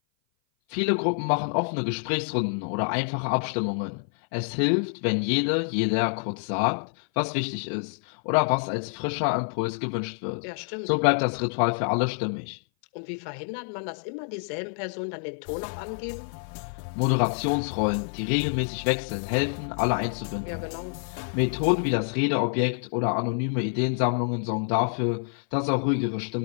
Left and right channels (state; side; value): silent; right; 57 dB below the other